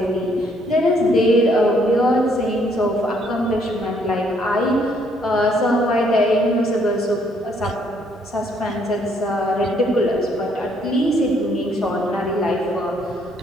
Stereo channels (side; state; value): both; normal; correlation 0.68